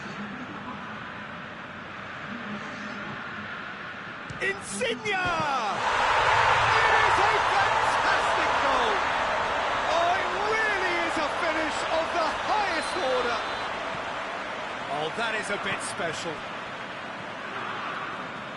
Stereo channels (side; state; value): both; identical; correlation 1.00